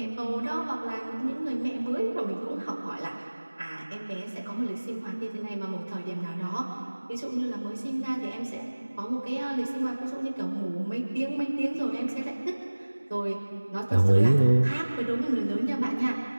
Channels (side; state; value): both; inverted; correlation -1.00